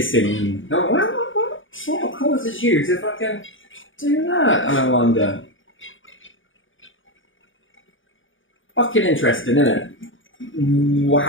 Oh, what sort of causes you if I can do that? I wonder. Fucking interesting, isn't it?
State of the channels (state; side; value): late; right; 0.57 ms